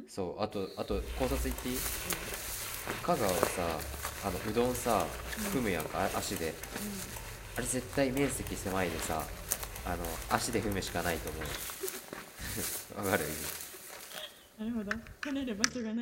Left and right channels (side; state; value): both; identical; correlation 1.00